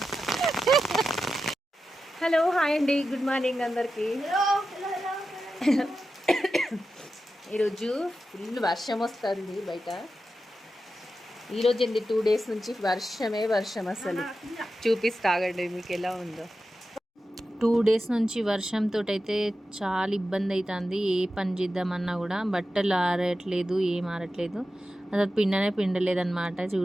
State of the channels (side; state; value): both; normal; correlation 0.91